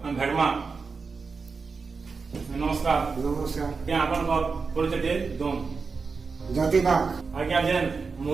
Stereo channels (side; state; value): left; quieter; 4.8 dB